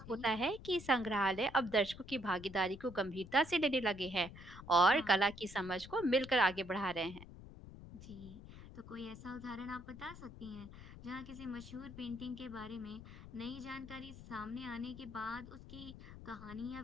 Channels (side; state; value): left; noise; rumble, 15 dB below the sound